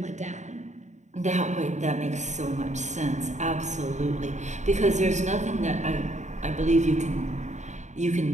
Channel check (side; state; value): left; late; 0.34 ms